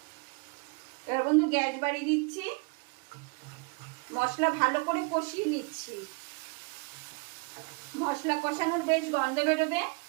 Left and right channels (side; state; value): left; quieter; 30.6 dB